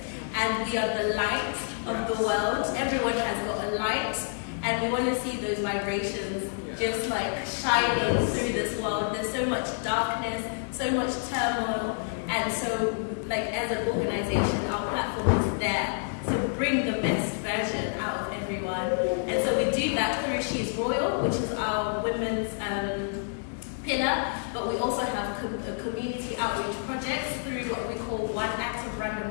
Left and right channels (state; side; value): silent; right; 59 dB below the other